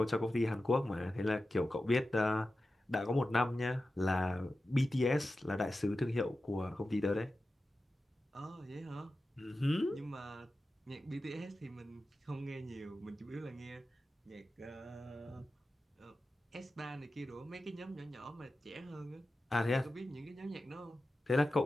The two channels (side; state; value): both; normal; correlation 0.93